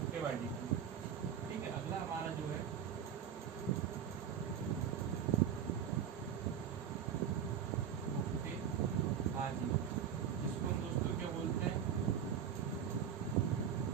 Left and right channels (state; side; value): quieter; left; 8.4 dB